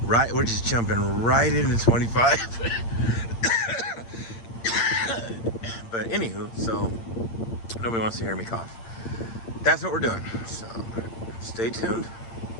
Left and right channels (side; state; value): right; late; 8.8 ms